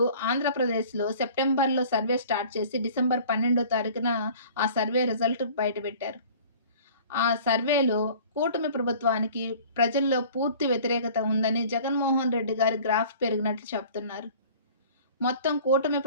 ఆంధ్రప్రదేశ్‌లో సెప్టెంబర్‌లో సర్వే స్టార్ట్ చేసి డిసెంబర్ 12వ తారీఖున ఆ సర్వే రిజల్ట్ బయటపెట్టారు. ఆ సర్వేలో కూటమి ప్రభుత్వానికి ప్రజల్లో పూర్తి వ్యతిరేకత ఉందని జగన్మోహన్ రెడ్డి గారి గ్రాఫ్ పెరిగినట్లు చెప్తున్నారు. మొత్తం కూటమి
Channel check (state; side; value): inverted; both; correlation -0.47